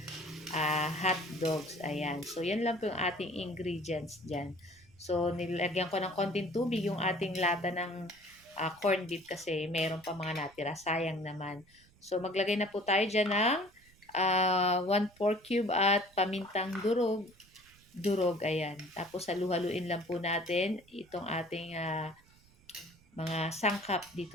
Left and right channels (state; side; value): noise; right; rumble, 28 dB below the sound